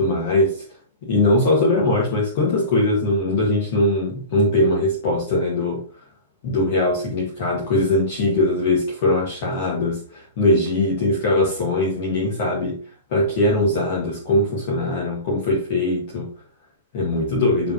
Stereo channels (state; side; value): inverted; both; correlation -0.33